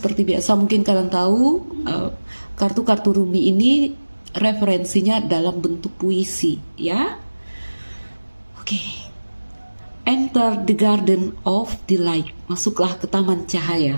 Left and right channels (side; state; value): both; inverted; correlation -1.00